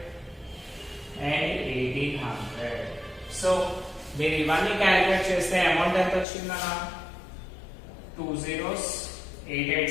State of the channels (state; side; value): drops out; right; at 6.2 s